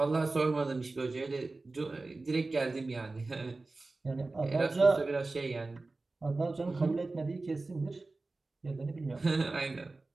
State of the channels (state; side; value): quieter; left; 3.4 dB